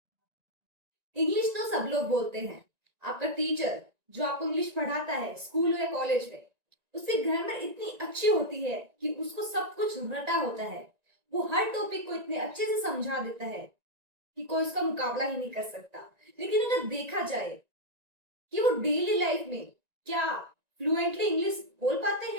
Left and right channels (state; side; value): late; left; 1.9 ms